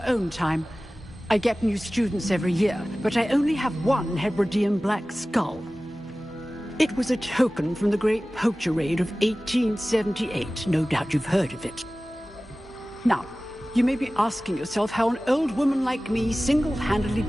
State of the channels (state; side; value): normal; both; correlation 0.97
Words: own time. I get new students every year, but I only have one Hebridean black skull. It was a token from the Great Poacher Raid of 1878. No doubt you've heard of it. Now, you may be asking yourself how an old woman like me single-handedly